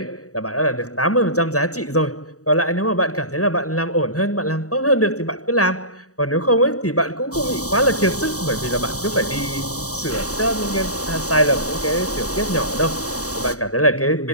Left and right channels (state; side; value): late; right; 0.66 ms